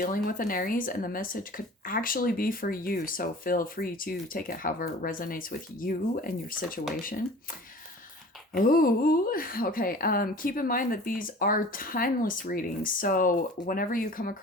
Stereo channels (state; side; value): normal; both; correlation 0.43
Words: with an Aries, and the message could actually be for you. So, feel free to take it however it resonates with you and your situation. Oh, okay. Keep in mind that these are timeless readings. So whenever you come